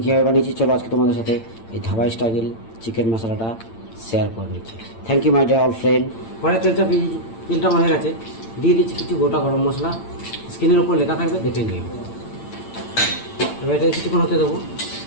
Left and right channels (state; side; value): late; right; 8.9 ms